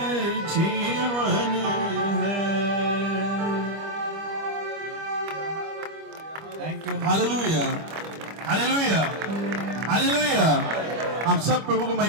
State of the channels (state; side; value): late; left; 25 ms